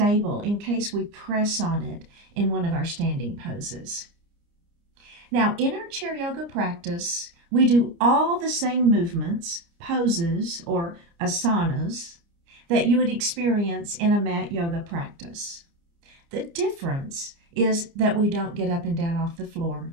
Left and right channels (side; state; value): left; late; 29 ms